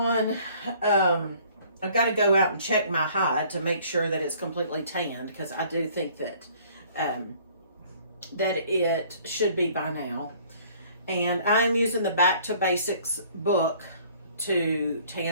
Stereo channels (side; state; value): both; inverted; correlation -0.56